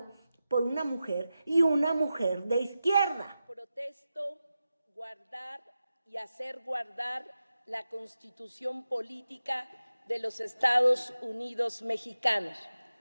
por una mujer y una mujer de izquierda. Protesto guardar y hacer guardar la Constitución política de los Estados Unidos mexicanos,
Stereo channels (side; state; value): both; inverted; correlation -0.92